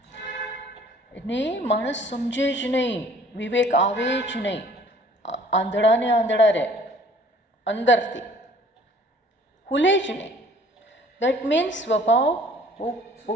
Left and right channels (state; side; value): normal; both; correlation 0.54